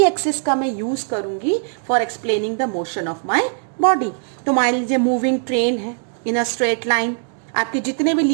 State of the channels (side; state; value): left; silent; 57 dB below the other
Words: एक्सिस का मैं यूज करूंगी for explaining the motion of my body. तो मान लीजिए मूविंग ट्रेन है इन अ स्ट्रेट लाइन, आपके जितने भी